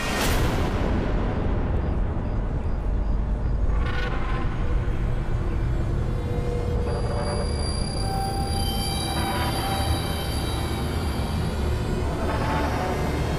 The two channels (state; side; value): identical; both; correlation 1.00